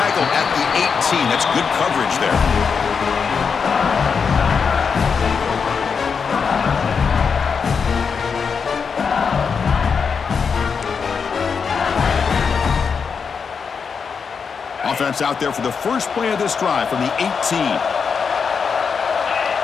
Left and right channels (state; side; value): quieter; right; 5.9 dB